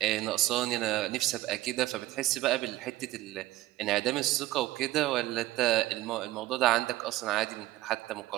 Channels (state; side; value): quieter; left; 16.9 dB